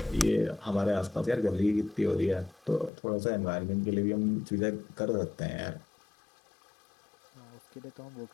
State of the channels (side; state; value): right; drops out; at 2.9 s